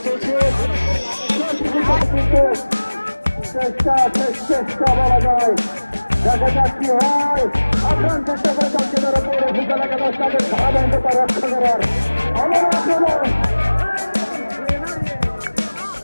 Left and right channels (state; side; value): inverted; both; correlation -1.00